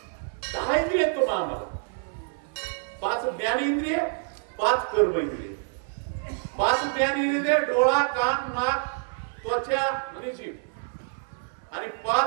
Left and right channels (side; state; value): left; silent; 60 dB below the other